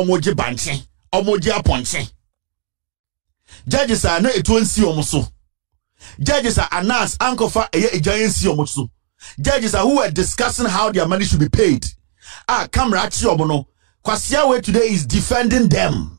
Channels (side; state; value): left; silent; digital silence